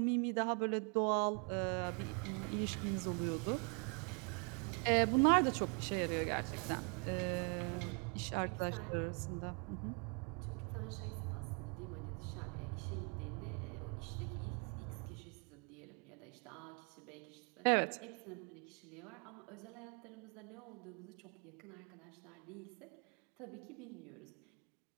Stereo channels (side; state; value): left; quieter; 36.9 dB